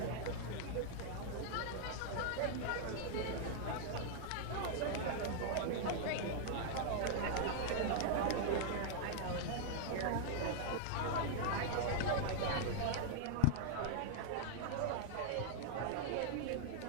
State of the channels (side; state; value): both; different; correlation -0.01